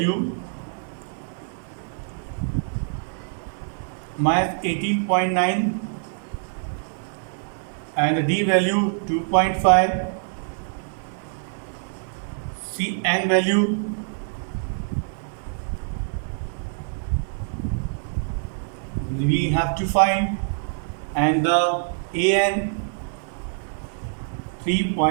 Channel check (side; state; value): left; silent; digital silence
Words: minus 18.9 and the D value 2.5. C N value we have to find, and the AN